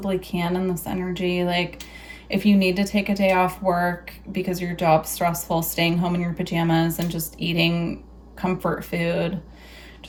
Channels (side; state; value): both; identical; correlation 1.00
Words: can in this energy. Like if you need to take a day off work because your job's stressful, staying home in your pajamas and just eating comfort food,